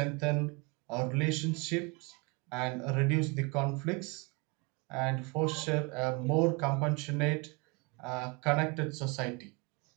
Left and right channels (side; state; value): left; quieter; 29.1 dB